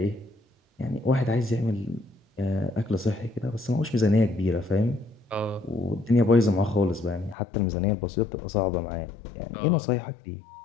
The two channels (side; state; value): right; drops out; at 7.4 s